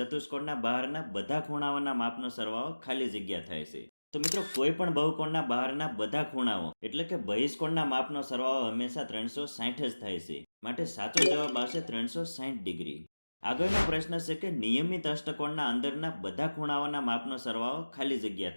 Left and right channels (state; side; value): inverted; both; correlation -1.00